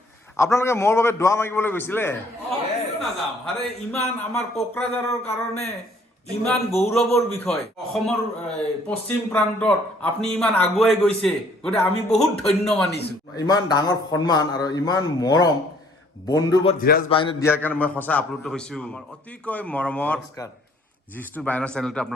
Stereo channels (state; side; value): normal; both; correlation 0.60